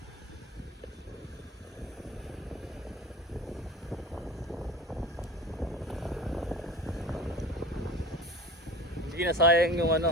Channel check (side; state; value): both; normal; correlation 0.37